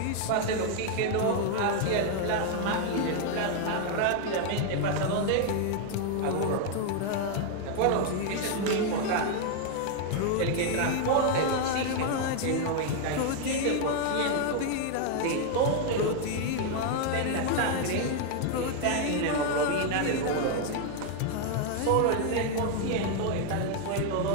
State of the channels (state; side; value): different; both; correlation 0.00